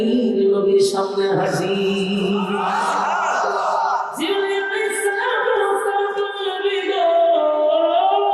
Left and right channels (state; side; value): identical; both; correlation 1.00